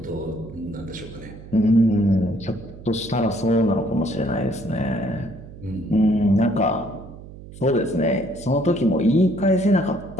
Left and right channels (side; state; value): right; noise; hum, 16 dB below the sound